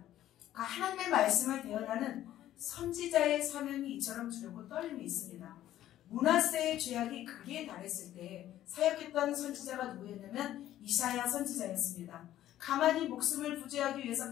그러니까 하나님의 말씀을 대언하는 선지자의 사명이 이처럼 두렵고 떨림이 있습니다. 므낫세의 죄악이 극에 달했을 때 사역했던 선지자가 누구였냐면 이사야 선지자였습니다. 가만히 목숨을 부지하기 위해서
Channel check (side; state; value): right; quieter; 12.9 dB